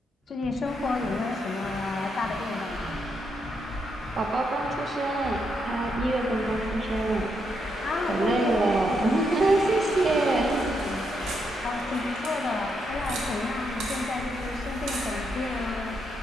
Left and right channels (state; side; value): normal; both; correlation 0.79